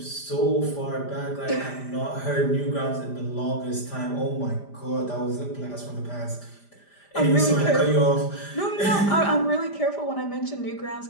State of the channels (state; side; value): late; right; 5.0 ms